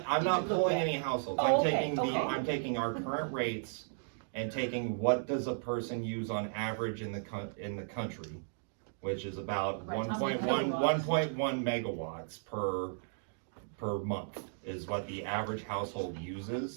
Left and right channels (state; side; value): silent; left; digital silence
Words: I'm not pulling any households, Oh, I'm okay, taking okay. I'm taking our current rates and taking what does a person use on average in the country, which is about Right, 1.1 megawatts per month is what the average household